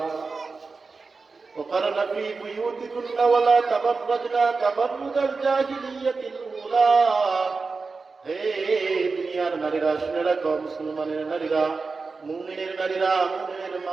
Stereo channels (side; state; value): left; quieter; 4.3 dB